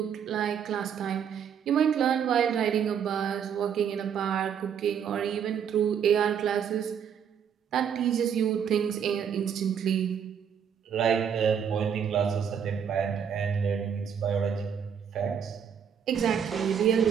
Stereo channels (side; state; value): left; quieter; 7.8 dB